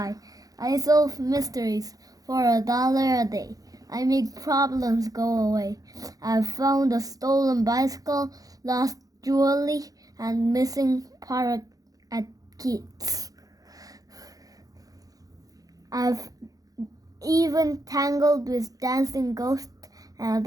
I solve mysteries for $1 a day. I make problems go away. I've found a stolen bicycle, lost jewelry, and missing parrot at kids. I've even tangled with dancing ghosts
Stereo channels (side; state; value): left; late; 0.17 ms